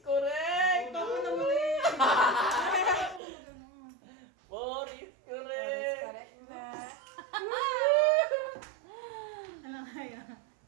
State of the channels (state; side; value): drops out; left; at 3.2 s